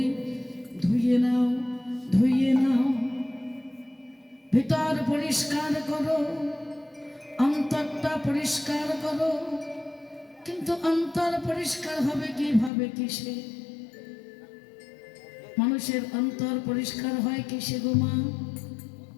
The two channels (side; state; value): right; drops out; at 12.7 s